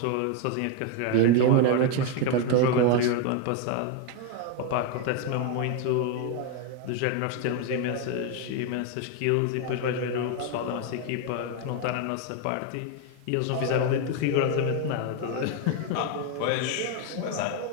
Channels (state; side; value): different; both; correlation 0.01